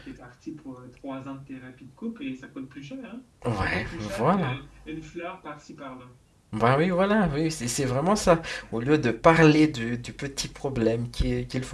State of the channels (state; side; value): identical; both; correlation 1.00